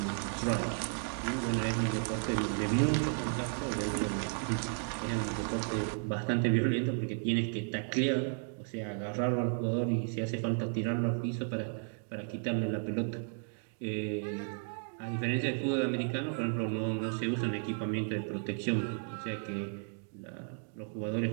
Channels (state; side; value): silent; left; 55 dB below the other